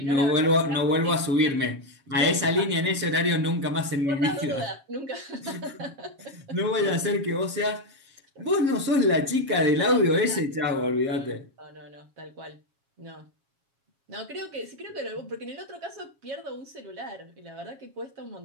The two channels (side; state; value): left; late; 7.3 ms